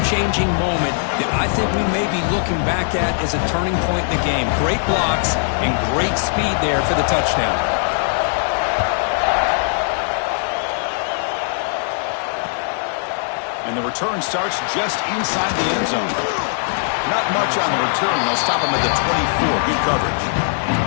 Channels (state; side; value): silent; right; digital silence